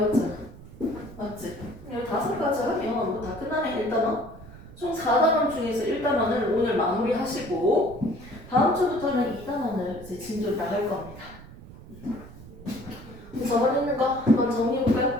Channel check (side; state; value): right; noise; rumble, 17 dB below the sound